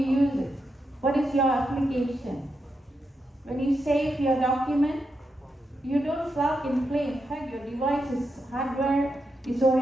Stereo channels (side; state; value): both; normal; correlation 0.85